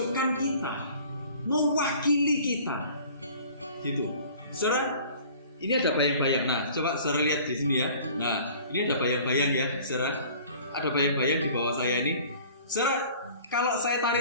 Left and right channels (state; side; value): inverted; both; correlation -0.48